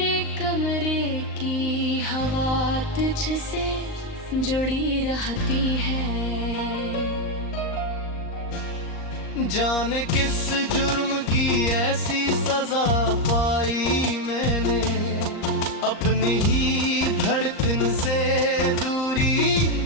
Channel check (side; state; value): right; late; 38 ms